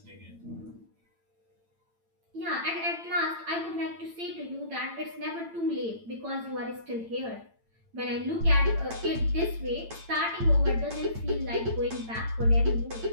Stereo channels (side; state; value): left; late; 8.9 ms